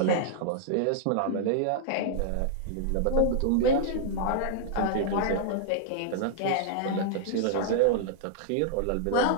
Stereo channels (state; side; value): different; both; correlation -0.01